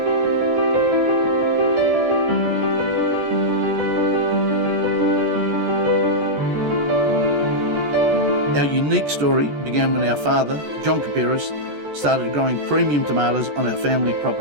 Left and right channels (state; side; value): late; left; 14 ms